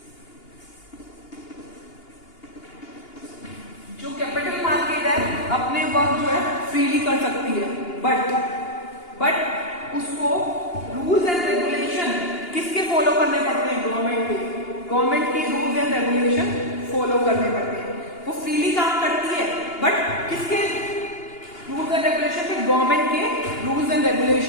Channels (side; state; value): right; late; 2.8 ms